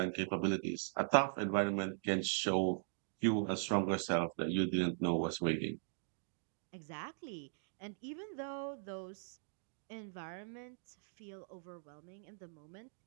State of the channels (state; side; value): silent; left; digital silence